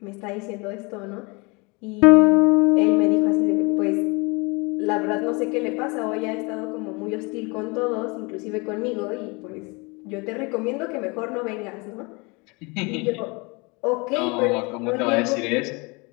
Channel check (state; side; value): quieter; right; 28.4 dB